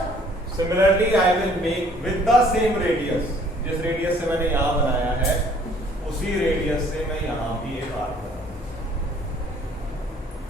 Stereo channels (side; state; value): both; normal; correlation 0.58